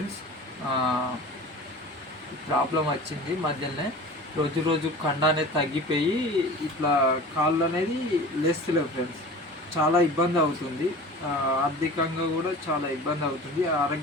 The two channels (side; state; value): both; normal; correlation 0.38